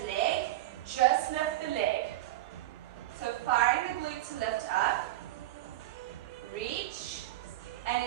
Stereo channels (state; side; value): quieter; left; 15.7 dB